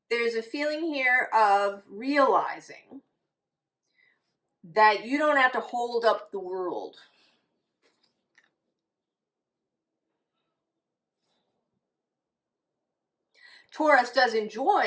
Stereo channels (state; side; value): identical; both; correlation 1.00